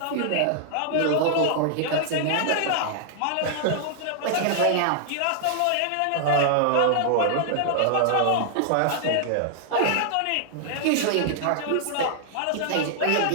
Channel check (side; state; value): both; different; correlation -0.01